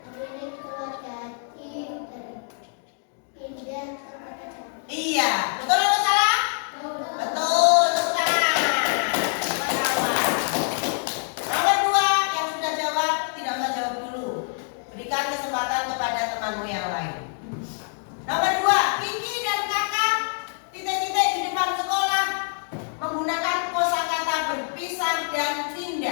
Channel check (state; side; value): silent; right; 56 dB below the other